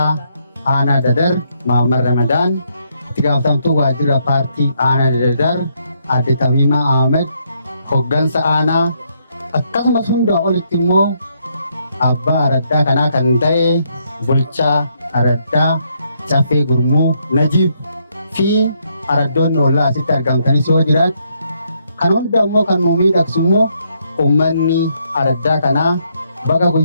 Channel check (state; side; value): inverted; both; correlation -0.74